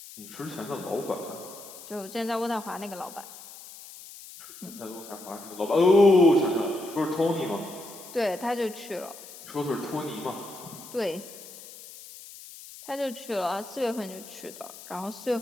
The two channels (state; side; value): noise; left; hiss, 16 dB below the sound